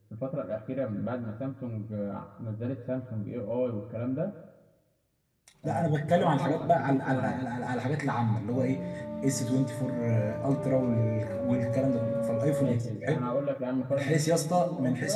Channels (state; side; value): identical; both; correlation 1.00